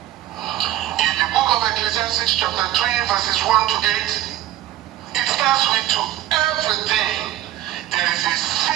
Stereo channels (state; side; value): quieter; left; 13.6 dB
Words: In the book of Ecclesiastes chapter 3 verses 1 to 8, it starts with to everything there is a